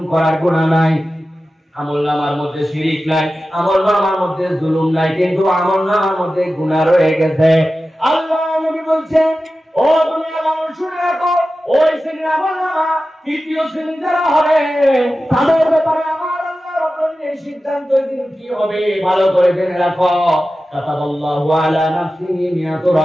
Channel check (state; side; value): normal; both; correlation 0.94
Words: করার গুনাহ নাই। আমলনামার মধ্যে শিরক নাই, আমলনামার মধ্যে জুলুম নাই, কিন্তু আমলনামার মধ্যে গুনাহ রয়ে গেছে। আল্লাহ নবী বলছেন ও দুনিয়ার মানুষ শুনে রাখো, ওই শ্রেণীর আমলনামা তৃতীয় শ্রেণী যারা হবে তাদের ব্যাপারে আমার আল্লাহ রাব্বুল আলামিনের সিদ্ধান্ত দিন কি হবে ভালো করে জেনে রাখো। কাতাবাল্লাহু আলা নাফসিহি মিয়াতু